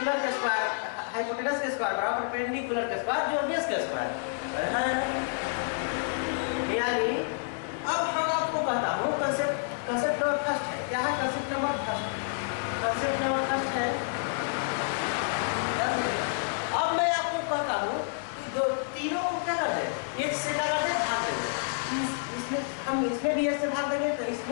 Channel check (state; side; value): silent; right; 58 dB below the other